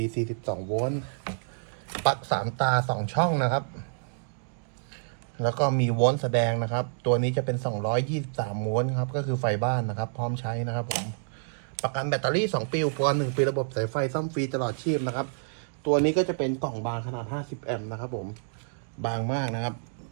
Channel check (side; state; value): left; silent; digital silence